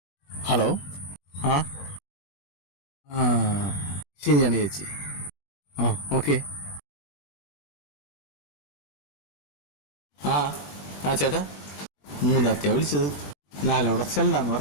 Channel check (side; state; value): right; late; 20 ms